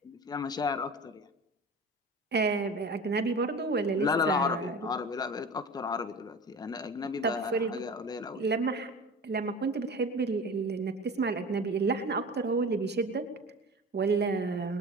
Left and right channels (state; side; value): normal; both; correlation 0.35